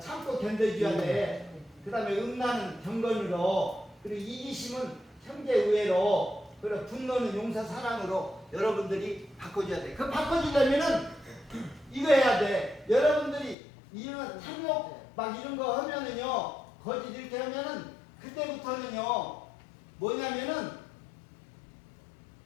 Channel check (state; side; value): drops out; right; at 13.6 s